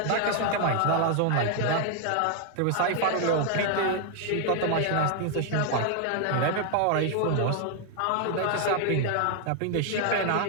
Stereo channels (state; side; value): different; both; correlation 0.00